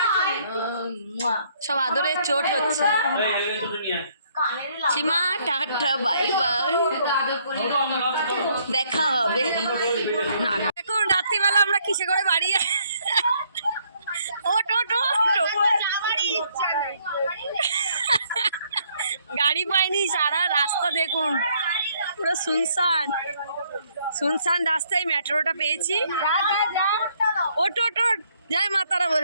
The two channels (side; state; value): both; inverted; correlation -0.68